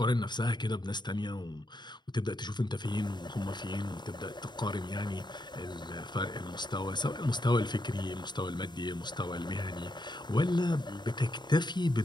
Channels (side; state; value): right; late; 0.21 ms